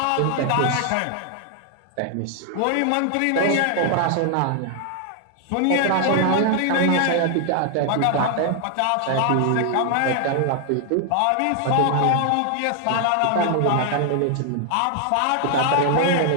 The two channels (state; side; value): different; both; correlation 0.00